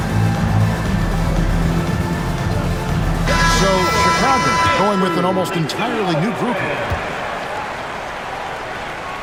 going with an almost entirely new group here.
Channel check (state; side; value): identical; both; correlation 1.00